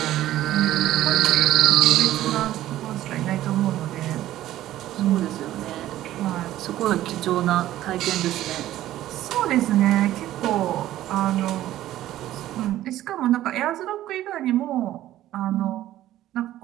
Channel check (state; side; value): quieter; left; 13.9 dB